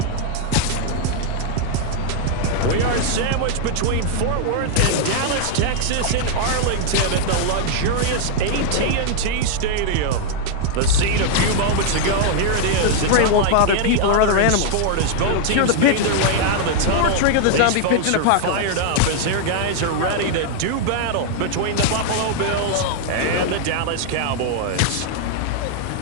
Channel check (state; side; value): different; both; correlation 0.00